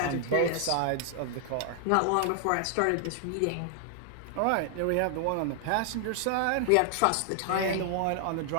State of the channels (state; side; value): different; both; correlation 0.00